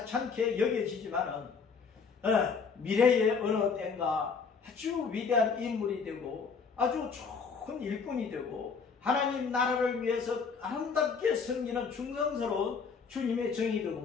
여겨지지만은 미래의 어느 때인가 아주 위대한 인물이 되고 아주 좋은 일꾼이 되고 하나님 나라를 위해서 아름답게 섬기는 충성스러운 주님의 정이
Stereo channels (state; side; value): quieter; right; 5.5 dB